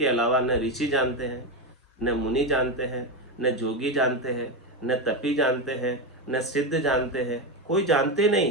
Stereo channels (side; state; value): both; normal; correlation 0.12